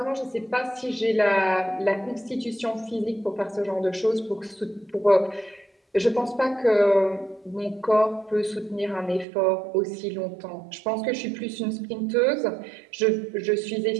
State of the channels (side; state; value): left; drops out; at 9.2 s